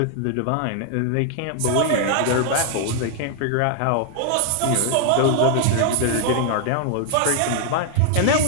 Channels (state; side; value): different; both; correlation 0.00